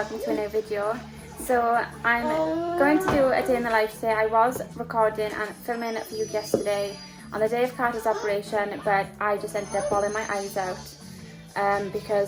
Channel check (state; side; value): identical; both; correlation 1.00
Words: to a new video. So I'm going to do a day in the life today. I was recording and filming for you yesterday on the day of Carter's operation, but I just ended up bawling my eyes out